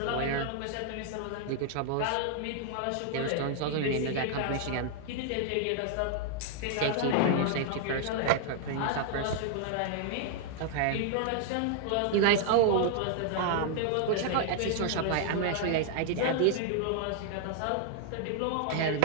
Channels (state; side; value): different; both; correlation 0.00